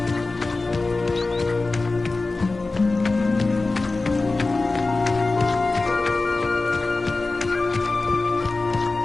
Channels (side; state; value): right; quieter; 3.5 dB